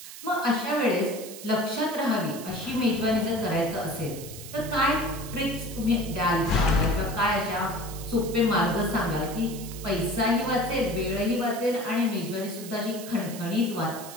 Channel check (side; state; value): right; noise; hiss, 13 dB below the sound